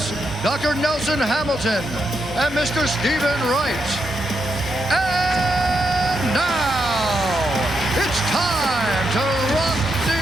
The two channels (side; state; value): both; normal; correlation 0.82